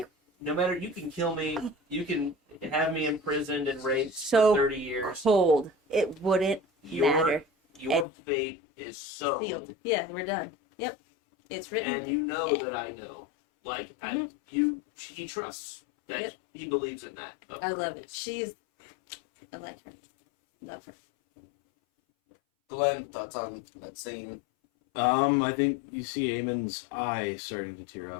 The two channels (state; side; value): drops out; right; at 8.1 s